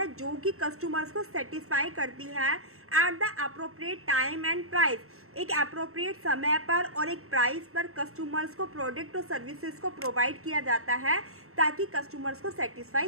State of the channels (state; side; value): late; left; 0.63 ms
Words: जो कि कस्टमर्स को सेटिस्फाई करती है at the appropriate time and price, एक अप्रोप्रिएट समय पर और एक प्राइस पर कस्टमर्स को प्रोडक्ट और सर्विसेज को प्रोवाइड किया जाता है ताकि कस्टमर्स को